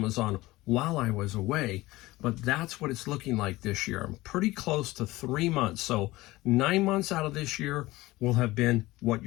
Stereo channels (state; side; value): quieter; right; 19.0 dB